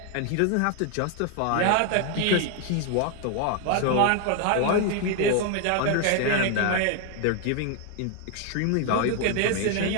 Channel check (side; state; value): both; different; correlation 0.00